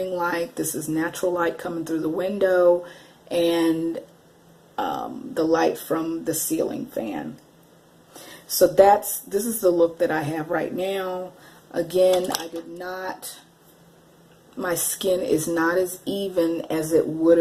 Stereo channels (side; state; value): both; identical; correlation 1.00